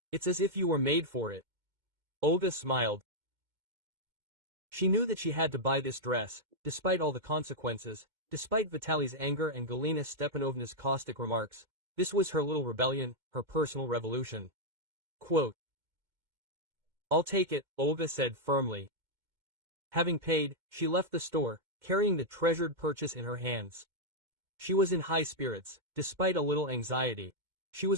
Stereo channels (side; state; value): left; late; 2.1 ms